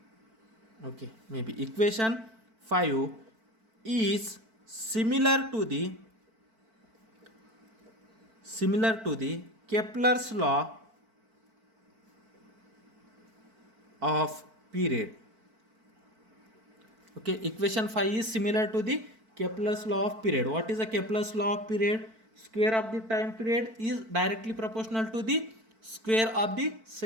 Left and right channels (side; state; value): left; late; 4.5 ms